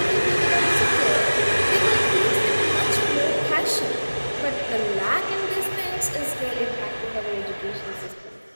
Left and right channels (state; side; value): inverted; both; correlation -1.00